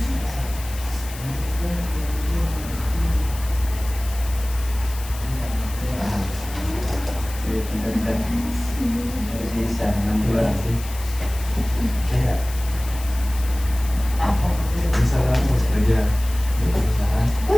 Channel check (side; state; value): left; noise; hiss, 14 dB below the sound